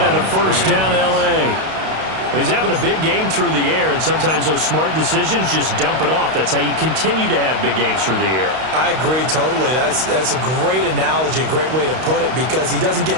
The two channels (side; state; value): left; late; 32 ms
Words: and a first down L.A. He's having a big game through the air, and sometimes those smart decisions just dump it off. That's how you continue to have big games through the air. I agree totally. That's a great analogy, a great way to put it, because he doesn't